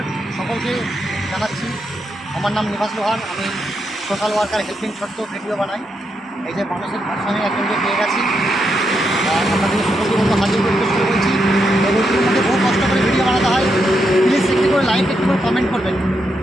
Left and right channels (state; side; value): normal; both; correlation 0.82